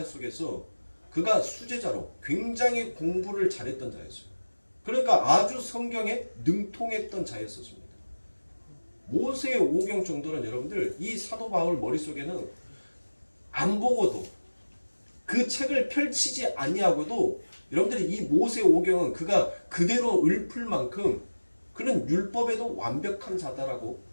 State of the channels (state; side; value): inverted; both; correlation -1.00